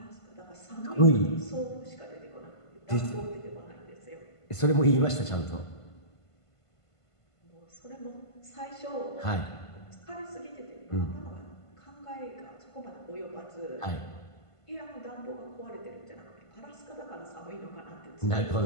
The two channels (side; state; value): right; late; 1.5 ms